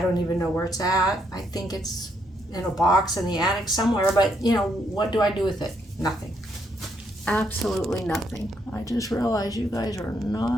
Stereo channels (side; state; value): both; normal; correlation 0.75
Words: even know where it's at. I think it's in a box in the attic somewhere, but, you know, what do I do with it? Nothing. Absolutely nothing. I just realized you guys are